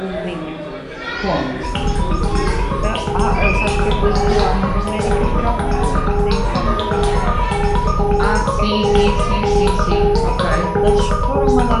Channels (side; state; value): both; identical; correlation 1.00